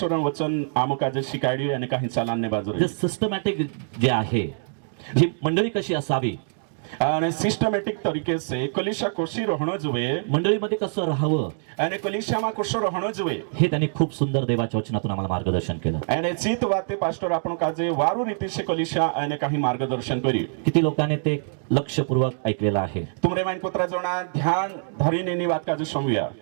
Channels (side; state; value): left; silent; digital silence